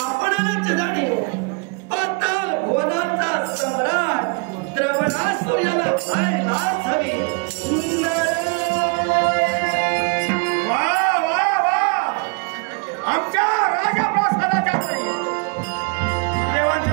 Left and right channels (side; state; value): left; quieter; 33.9 dB